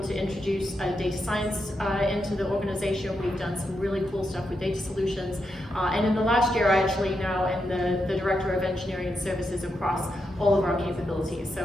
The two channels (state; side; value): normal; both; correlation 0.84